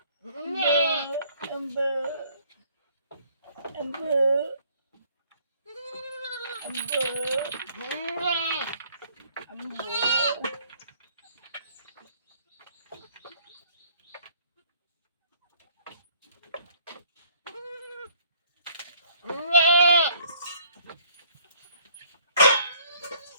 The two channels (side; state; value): both; inverted; correlation -0.60